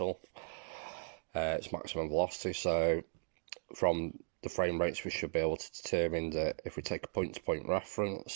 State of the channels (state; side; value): silent; left; digital silence